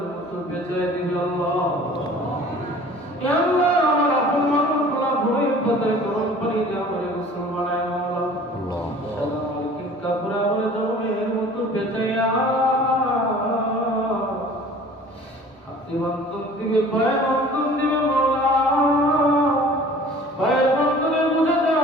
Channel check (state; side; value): normal; both; correlation 0.47